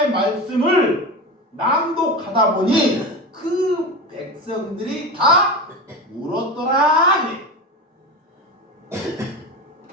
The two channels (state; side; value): normal; both; correlation 0.25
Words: 말씀을 낭독하다 보니 그 백성들이 다 울었더라.